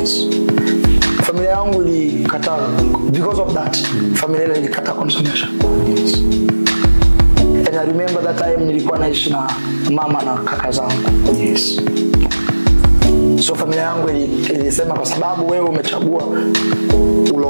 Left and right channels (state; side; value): inverted; both; correlation -1.00